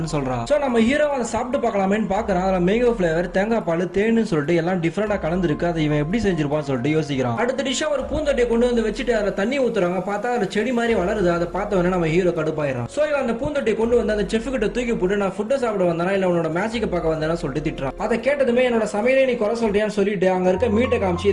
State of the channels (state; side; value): identical; both; correlation 1.00